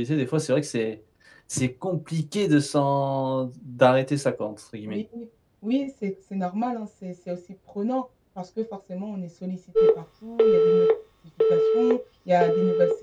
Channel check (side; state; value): both; identical; correlation 1.00